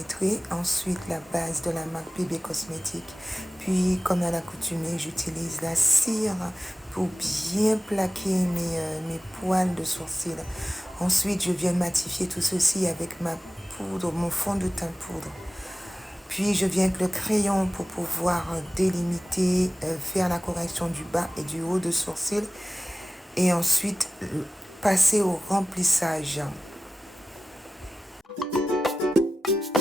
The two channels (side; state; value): both; normal; correlation 0.95